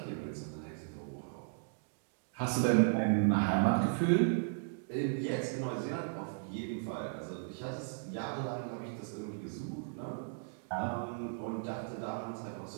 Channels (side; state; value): left; silent; digital silence